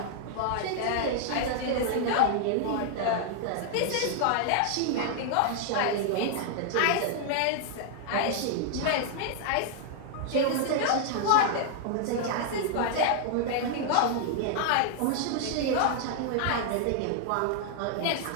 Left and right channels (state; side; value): different; both; correlation 0.00